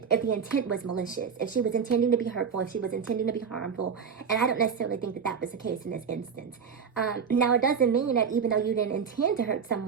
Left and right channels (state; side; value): quieter; left; 6.5 dB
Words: If the intent was malicious, if she was intending to be hurtful, if she was intending to be harmful, and I don't necessarily think that that was the case in this instance. Now, it doesn't mean that even though you didn't intend to hurt